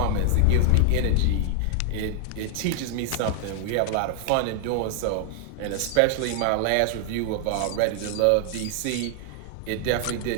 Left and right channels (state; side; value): different; both; correlation 0.00